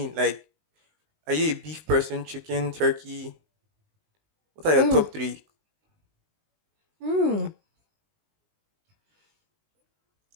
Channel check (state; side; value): late; left; 19 ms